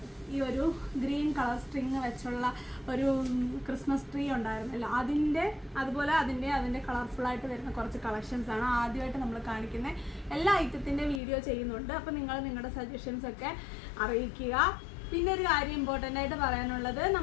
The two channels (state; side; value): drops out; right; at 11.2 s